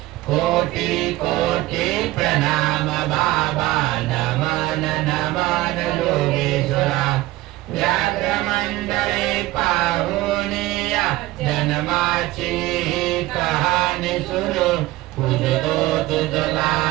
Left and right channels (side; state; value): left; quieter; 17.9 dB